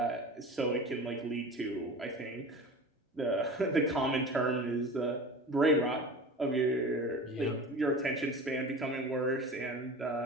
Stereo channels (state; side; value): normal; both; correlation 0.35